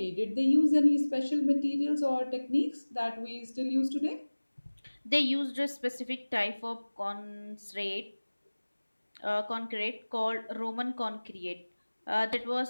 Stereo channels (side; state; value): both; inverted; correlation -1.00